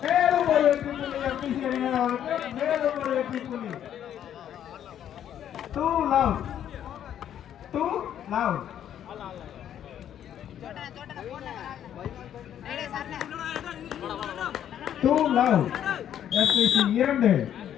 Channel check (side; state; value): right; quieter; 10.2 dB